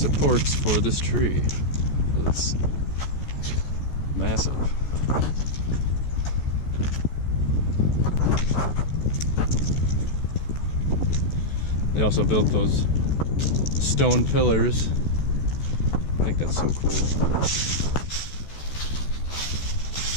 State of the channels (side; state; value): right; late; 14 ms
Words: for this tree. It's massive. They also built those stone pillars. I think that's so cool.